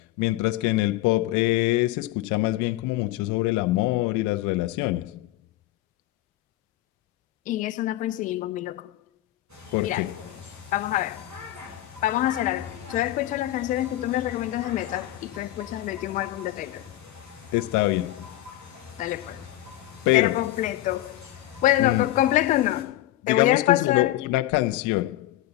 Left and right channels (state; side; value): quieter; right; 15.4 dB